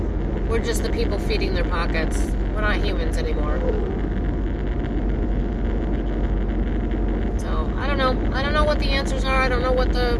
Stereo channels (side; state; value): both; identical; correlation 1.00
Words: we're just the people feeding their pockets. We're not humans anymore. So, I don't know. I don't know what the answers are. I don't know what the